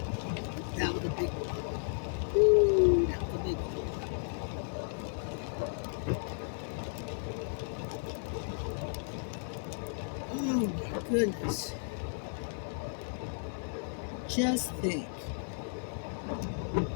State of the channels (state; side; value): silent; right; 55 dB below the other